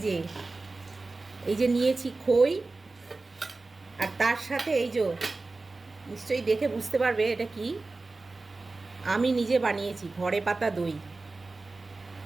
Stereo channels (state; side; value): quieter; left; 3.5 dB